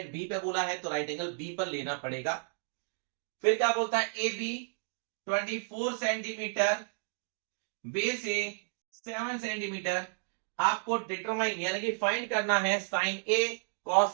B पे बोला है तो राइट एंगल बी पर लेना पड़ेगा। फिर क्या बोलता है? A B 24 centimetre, base A 7 centimetre. आपको डिटरमाइन यानी कि फाइंड करना है साइन ए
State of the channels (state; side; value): silent; left; digital silence